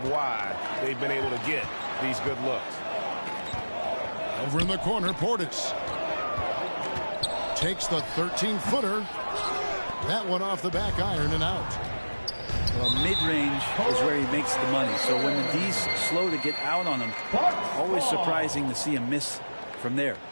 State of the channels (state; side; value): inverted; both; correlation -1.00